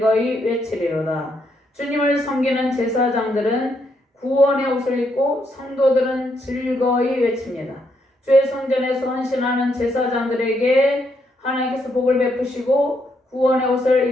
외치리로다. 주님을 섬기는 제사장들은 구원의 옷을 입고 성도들은 즐거이 외칩니다. 주의 성전에서 헌신하는 제사장들에게 하나님께서 복을 베푸시고 구원의 옷을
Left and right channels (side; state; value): both; normal; correlation 0.76